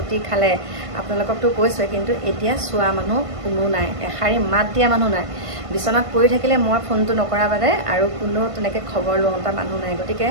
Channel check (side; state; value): left; late; 1.5 ms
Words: খালে আপোনালোককতো কৈছোৱে কিন্তু এতিয়া চোৱা মানুহ কোনো নাই এষাৰি মাত দিয়া মানুহ নাই বিচনাত পৰি থাকিলে মই ফোনটো নকৰা বাদে আৰু কোনো তেনেকৈ খবৰ লওঁতা মানুহ নাই গতিকে